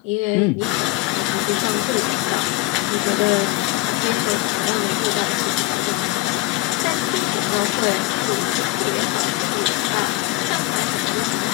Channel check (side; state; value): right; quieter; 19.2 dB